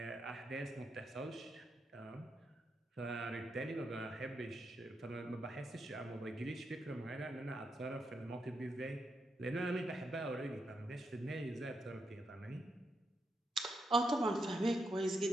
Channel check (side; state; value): both; normal; correlation 0.83